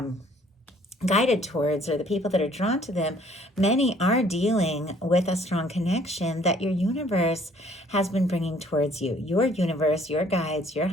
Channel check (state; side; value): normal; both; correlation 0.59